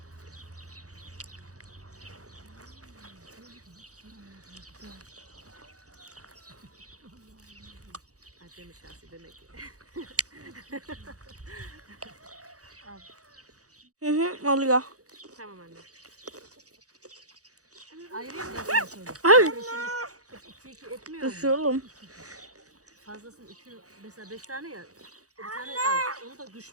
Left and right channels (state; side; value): late; left; 0.66 ms